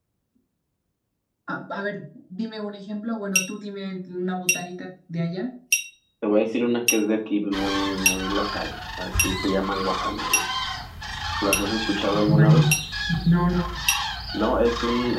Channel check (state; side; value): identical; both; correlation 1.00